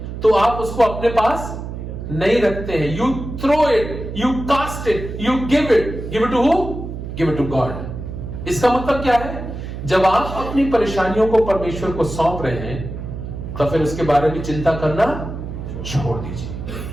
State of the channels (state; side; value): noise; right; hum, 8 dB below the sound